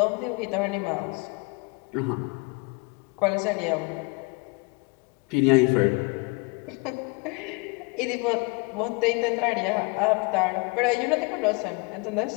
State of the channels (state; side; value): quieter; right; 29.3 dB